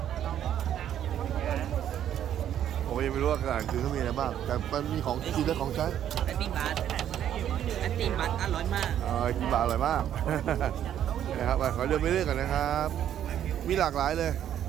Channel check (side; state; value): left; quieter; 10.5 dB